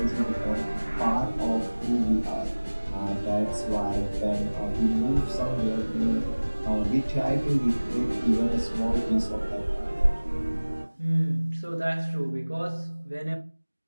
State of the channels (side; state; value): both; inverted; correlation -1.00